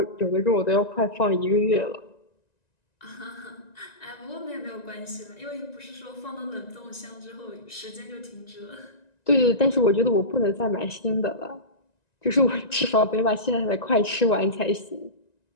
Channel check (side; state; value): right; late; 1.9 ms